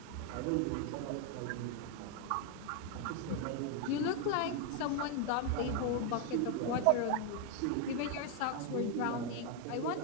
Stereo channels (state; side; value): different; both; correlation 0.01